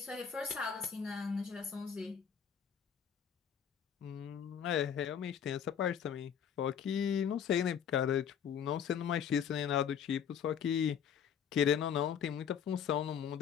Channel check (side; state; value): right; quieter; 8.0 dB